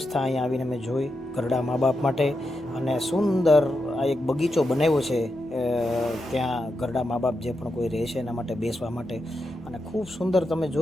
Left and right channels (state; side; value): normal; both; correlation 0.86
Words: અહીંયા આવીને મેં જોઈ ઘરડા મા બાપ માટે. અને સુંદર આ એક બગીચો બનાવ્યો છે ત્યાં ઘરડા મા બાપ જે પણ કોઈ રહે છે એના માટે બેસવા માટે. અને ખૂબ સુંદર તમે